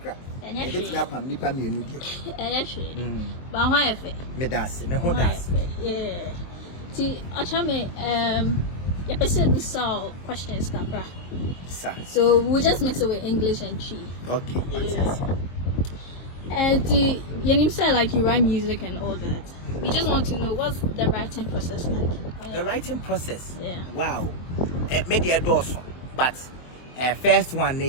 Yes. But why if it? Me das, me ho das. Yeah. See, Okyeame, your person saw questions kakra. So we'll just mix it with English and Chi. Okay. Yes. And you say like you write music and all that. We just want to know what's the writing process like. The writing process. Yeah. Wow. Media dorsum. But first one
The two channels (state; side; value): late; right; 23 ms